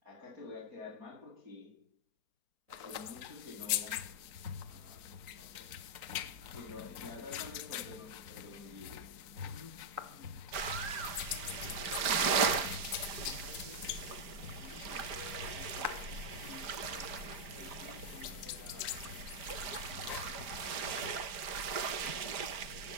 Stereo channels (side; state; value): left; late; 4.4 ms